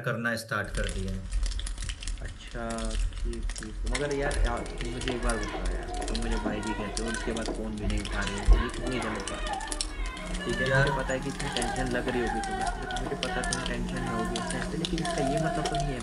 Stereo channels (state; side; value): identical; both; correlation 1.00